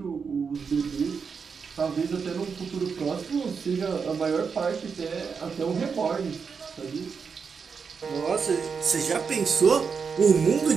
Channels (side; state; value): left; quieter; 5.8 dB